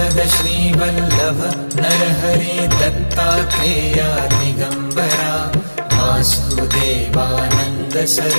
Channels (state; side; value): inverted; both; correlation -1.00